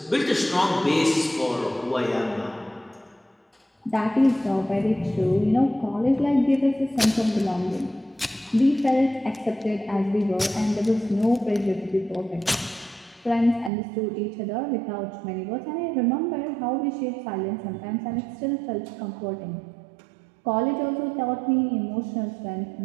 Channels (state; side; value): drops out; left; at 13.7 s